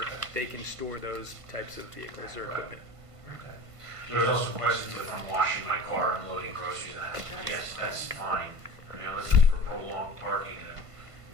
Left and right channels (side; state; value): left; late; 1.5 ms